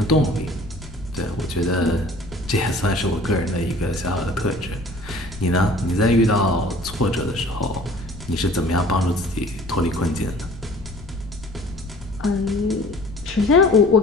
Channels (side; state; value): left; noise; rumble, 16 dB below the sound